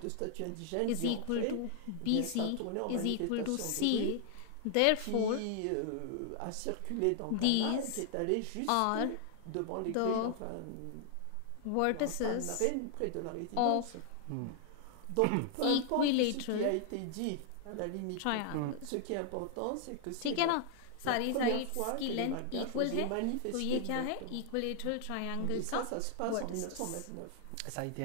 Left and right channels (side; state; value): both; different; correlation 0.00